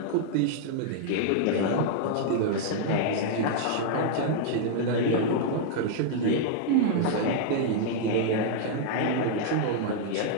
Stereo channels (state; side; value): different; both; correlation -0.01